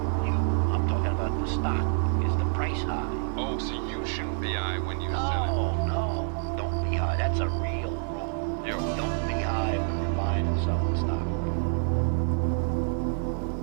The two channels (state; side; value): silent; left; 60 dB below the other